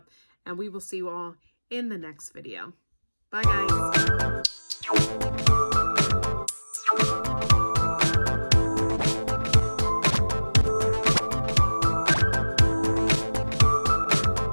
and we will see you all in the next video. Bye, guys.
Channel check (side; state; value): both; inverted; correlation -1.00